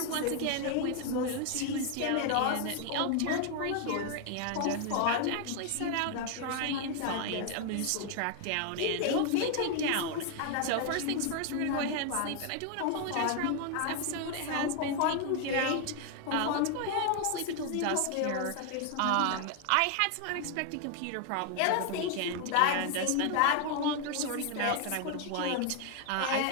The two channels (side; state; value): both; different; correlation 0.00